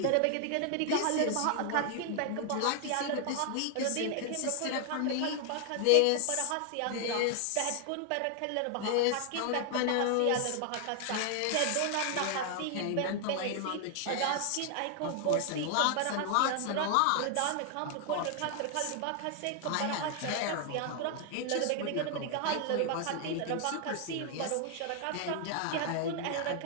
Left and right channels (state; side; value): different; both; correlation 0.00